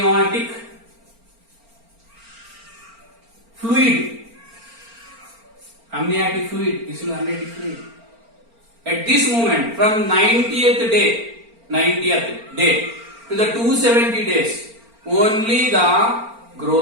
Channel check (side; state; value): left; late; 4.4 ms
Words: fluid. Amniotic fluid. This is amniotic fluid. At this moment, from 90th day to the 270 days, only the